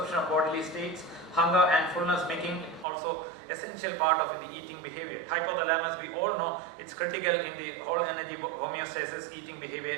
of bodily states, hunger and fullness, making also essential part of the eating behavior. Hypothalamus, we all know, it's critical in the whole energy homeostasis, eating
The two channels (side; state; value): left; drops out; at 2.9 s